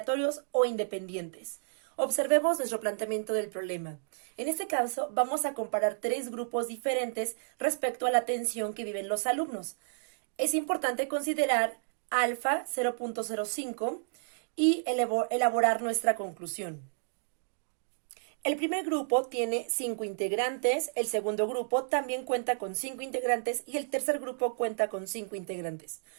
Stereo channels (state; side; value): silent; left; digital silence